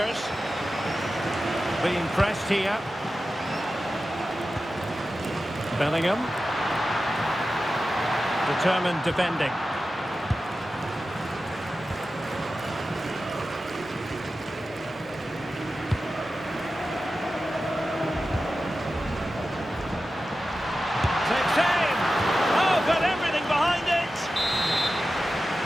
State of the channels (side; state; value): both; normal; correlation 0.93